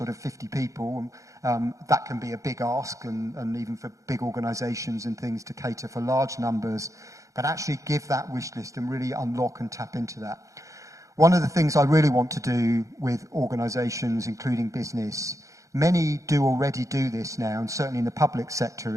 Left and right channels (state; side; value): late; left; 0.15 ms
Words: of 50 people. That can be a big ask, and even for big organisations and things to cater for large numbers, but actually give that wish list and really unlock and tap into that. One of the things I really want to do with organisations, including business, many do already do this now, and certainly in the public sector